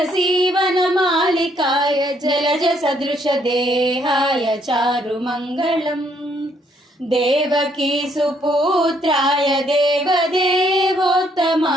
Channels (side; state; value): both; normal; correlation 0.69